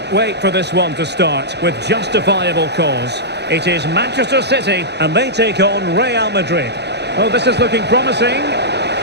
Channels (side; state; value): left; late; 0.49 ms